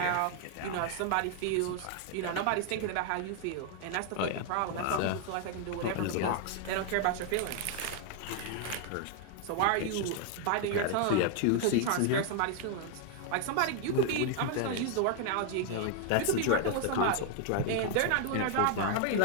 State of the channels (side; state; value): both; different; correlation 0.00